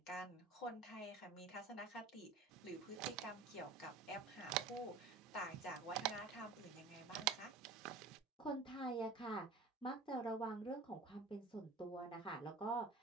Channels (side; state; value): left; quieter; 3.9 dB